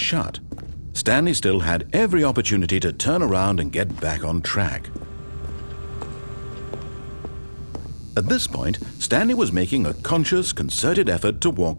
Stanley still had every opportunity to turn around and get back on track. At this point, Stanley was making a conscious, concerted effort to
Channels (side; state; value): both; inverted; correlation -1.00